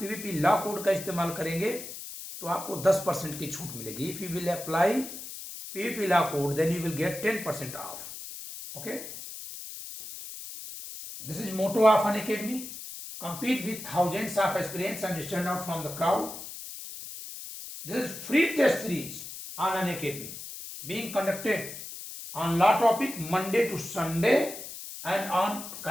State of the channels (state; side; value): noise; left; hiss, 10 dB below the sound